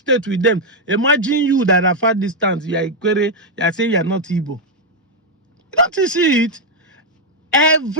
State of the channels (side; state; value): both; normal; correlation 0.00